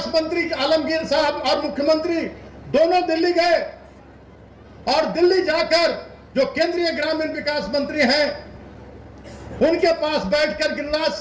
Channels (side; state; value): both; identical; correlation 1.00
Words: मंत्री आलमगीर साहब और मुख्यमंत्री दोनों दिल्ली गए और दिल्ली जाकर जो केंद्रीय ग्रामीण विकास मंत्री हैं उनके पास बैठकर, गिरिराज